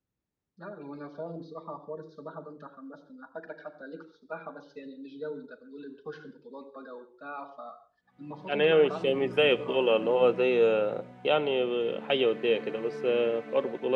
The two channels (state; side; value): identical; both; correlation 1.00